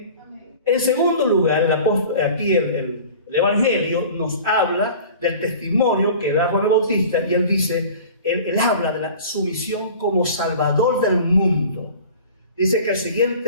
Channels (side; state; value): both; inverted; correlation -0.42